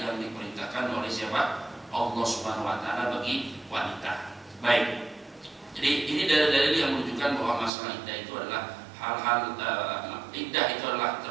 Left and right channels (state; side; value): drops out; left; at 7.7 s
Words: diperintahkan oleh siapa? Allah Subhanahu wa taala bagi wanita. Baik. Jadi ini dalil-dalil yang menunjukkan bahwa masalah iddah itu adalah hal-hal iddah itu adalah